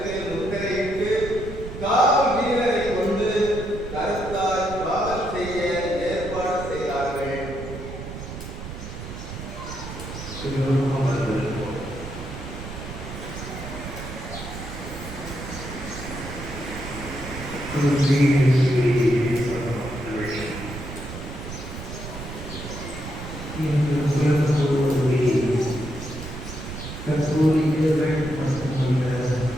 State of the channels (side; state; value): right; noise; rumble, 10 dB below the sound